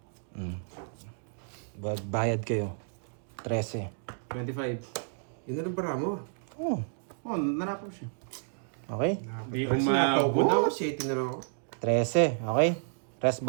Bayad kayo. 13. 25. Yun na lang para mo. Oh. Oh, nanapos siya. Okay. Di Ay, sinapaw ko na ako. 7 na lang ako. 13. Okay. Rest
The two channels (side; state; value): left; silent; 57 dB below the other